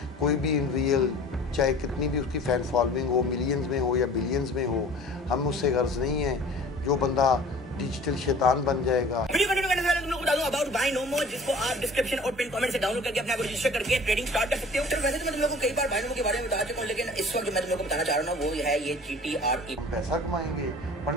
कोई भी इन रियल, चाहे कितनी भी उसकी फ़ैन फॉलोइंग हो, मिलियंस में हो या बिलियंस में हो, हम उससे गर्ज नहीं है। जो बंदा डिजिटल शैतान बन जाएगा। वीडियो कंटेंट करने से पहले तुम लोग को बता दूं अबाउट बाय नो मोर, जिसको आप डिस्क्रिप्शन और पिन कमेंट से डाउनलोड करके अपने आप रजिस्टर करके ट्रेडिंग स्टार्ट कर सकते हो। तो वैसे तो मैं तुम लोगों को कई बार बाय नो मोर के बारे में बता चुका हूं, लेकिन इस वक्त जो मैं तुम लोगों को बताना चाह रहा हूं वो है ये GTRE। पैसा कमाएंगे,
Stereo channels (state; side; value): normal; both; correlation 0.45